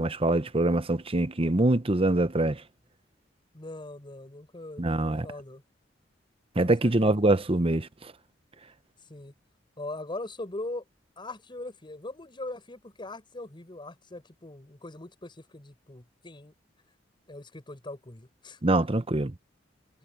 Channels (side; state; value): both; normal; correlation 0.66